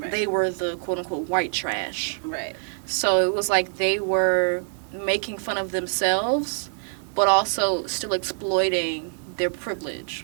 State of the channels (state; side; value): silent; left; digital silence